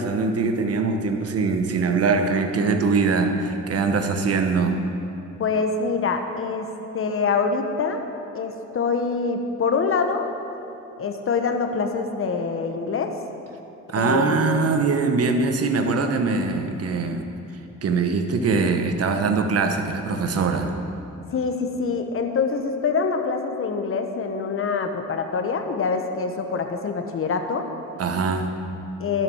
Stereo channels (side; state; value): both; normal; correlation 0.17